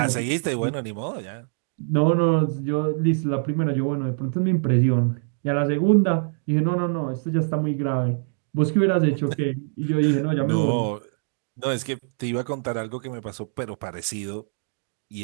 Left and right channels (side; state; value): left; silent; digital silence